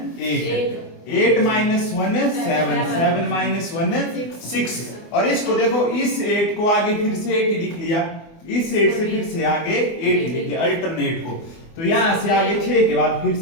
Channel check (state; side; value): late; right; 24 ms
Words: 8, 8 - 1 7, 7 - 1 6। और इसको देखो, इस 8 को आगे फिर से 8 लिख लिया, इस 8 से फिर से आगे 8 लिख लिया अल्टरनेट को। तो यहां से आगे 6 के बाद फिर